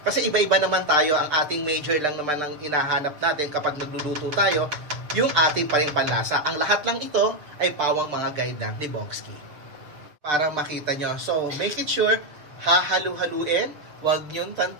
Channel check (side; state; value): left; late; 6.7 ms